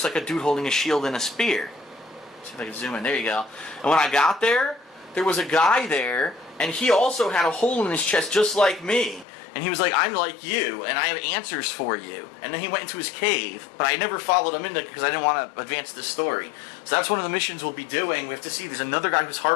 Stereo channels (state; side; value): drops out; right; at 9.2 s